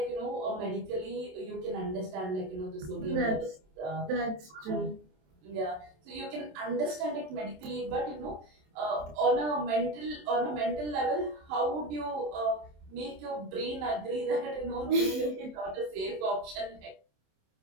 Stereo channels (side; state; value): left; late; 27 ms